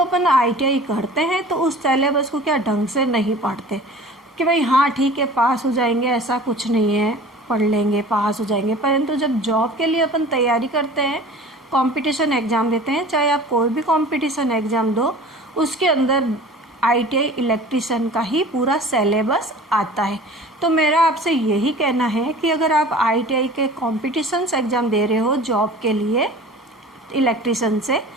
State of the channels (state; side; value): normal; both; correlation 0.42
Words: ITI करते हैं तो उस सिलेबस को क्या ढंग से नहीं पढ़ते कि भाई हाँ ठीक है पास हो जाएंगे, ऐसा कुछ नहीं है, पढ़ लेंगे पास हो जाएंगे। परंतु जब जॉब के लिए अपन तैयारी करते हैं, कंपटीशन एग्ज़ाम देते हैं, चाहे आप कोई भी कंपटीशन एग्ज़ाम दो, उसके अंदर ITI इलेक्ट्रिशियन का ही पूरा सिलेबस आता है। तो मेरा आपसे यही कहना है कि अगर आप ITI के कॉम्पिटिशन्स एग्ज़ाम दे रहे हो जॉब के लिए इलेक्ट्रिशियन से,